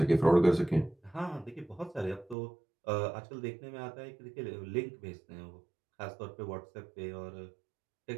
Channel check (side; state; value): left; drops out; at 2.4 s